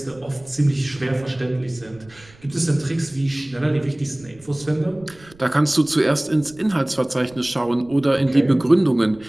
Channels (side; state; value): right; noise; rumble, 25 dB below the sound